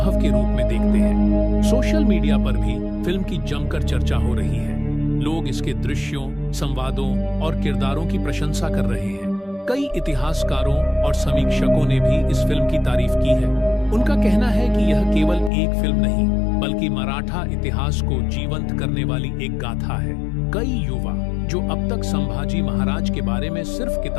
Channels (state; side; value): drops out; right; at 15.5 s